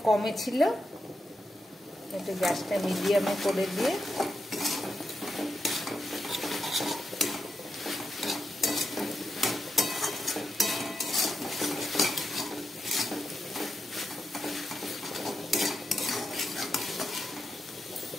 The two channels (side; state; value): both; normal; correlation 0.86